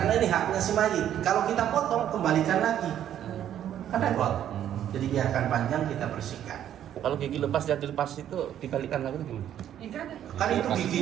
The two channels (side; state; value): left; quieter; 10.7 dB